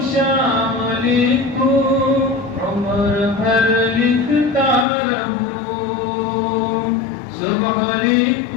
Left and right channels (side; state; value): right; drops out; at 4.9 s